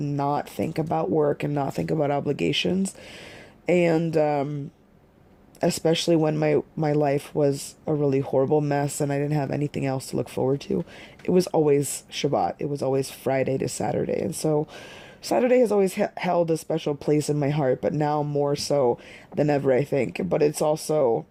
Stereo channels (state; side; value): identical; both; correlation 1.00